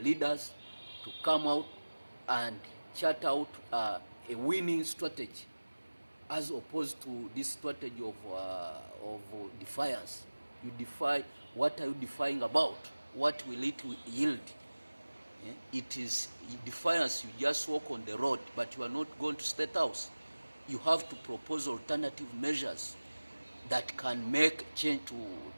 leaders to come out and chart out a winning strategy, as opposed to this strategy of defiance. You defy, what are you defying about? What will it yield? It is defiance. You just walk on the road, but you are not going to State House. You have to propose alternative measures that can make change to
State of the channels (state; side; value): inverted; both; correlation -1.00